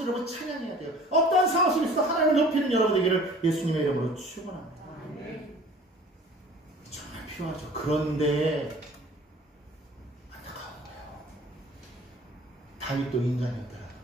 여러분 찬양해야 돼요. 어떠한 상황 속에서도 하나님을 높이는 여러분 되기를 예수님의 이름으로 축원합니다. 정말 필요하죠. 그런데 안타까운 거예요. 다윗도 인간이었다는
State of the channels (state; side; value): normal; both; correlation 0.48